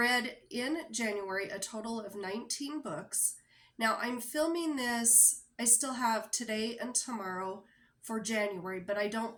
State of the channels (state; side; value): identical; both; correlation 1.00